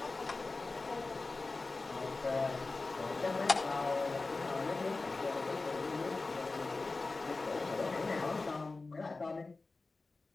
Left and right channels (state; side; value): quieter; right; 3.6 dB